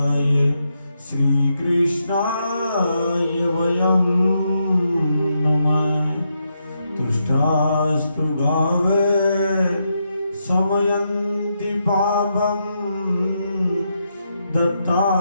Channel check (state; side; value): inverted; both; correlation -0.82